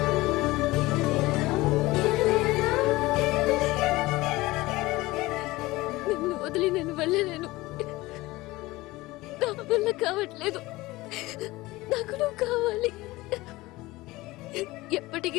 నిన్ను వదిలి నేను వెళ్ళలేను. నా వల్ల కావట్లేదు. నాకు నువ్వు కావాలి.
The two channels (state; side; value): quieter; right; 19.8 dB